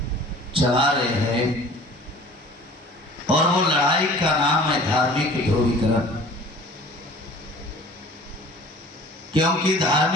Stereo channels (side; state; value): both; normal; correlation 0.47